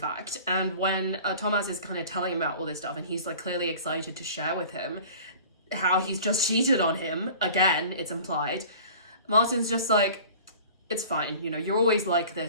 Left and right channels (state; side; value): inverted; both; correlation -0.44